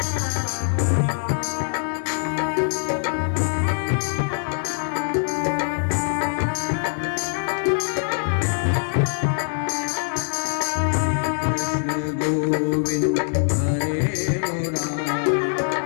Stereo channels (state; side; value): silent; right; digital silence